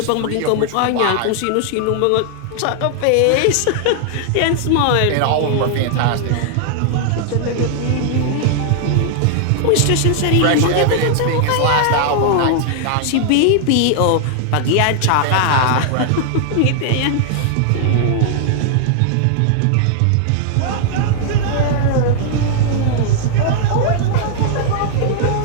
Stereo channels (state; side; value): different; both; correlation -0.01